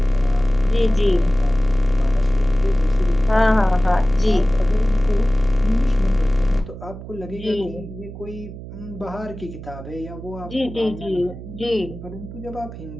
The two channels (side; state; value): right; noise; hum, 13 dB below the sound